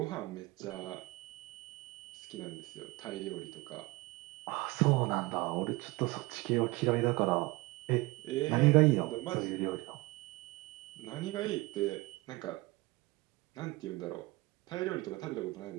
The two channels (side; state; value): left; quieter; 22.2 dB